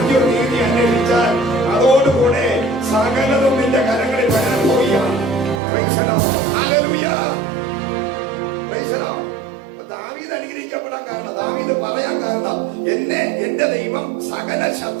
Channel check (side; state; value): left; drops out; at 5.6 s